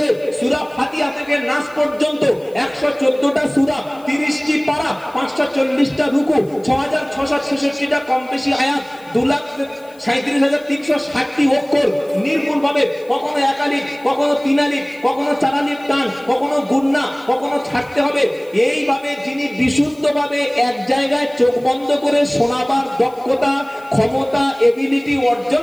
সূরা ফাতিহা থেকে নাস পর্যন্ত 114টা সূরা, 30টি পারা, 540টা রুকু, 6666টা কম বেশি আয়াত, 2,37,360টি অক্ষর নির্ভুল ভাবে, কখনো একালিক, কখনো তিনালিক, কখনো চারালিক টান, কখনো গুন্না, কখনো ছাড়তে হবে। এইভাবে যিনি বিশুদ্ধভাবে এক জায়গায় চোখ বন্ধ করে শোনাবার দক্ষতা, ক্ষমতা, এবিলিটি অর্জন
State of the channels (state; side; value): noise; left; hiss, 28 dB below the sound